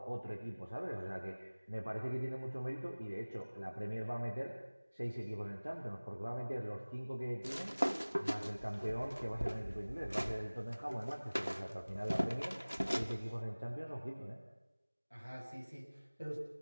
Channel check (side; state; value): both; inverted; correlation -1.00